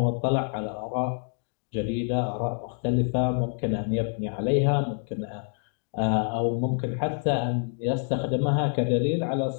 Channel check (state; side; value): silent; right; 57 dB below the other